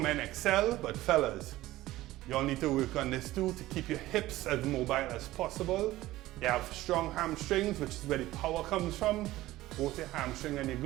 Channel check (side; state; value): left; quieter; 16.6 dB